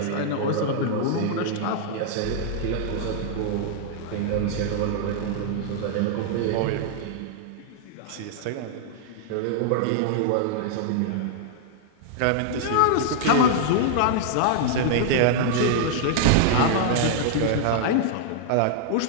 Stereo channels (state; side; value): different; both; correlation -0.01